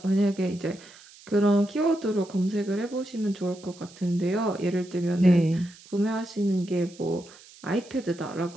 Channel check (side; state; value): right; noise; hiss, 22 dB below the sound